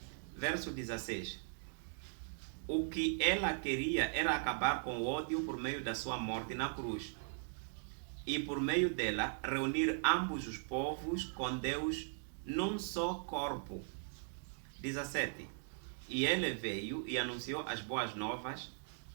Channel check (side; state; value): left; silent; digital silence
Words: Verso 16. O que ela queria era acabar com o ódio por meio da sua morte na cruz. E por meio dela, reunir ambos os povos com Deus num só corpo. 17. E ele veio e anunciou as boas novas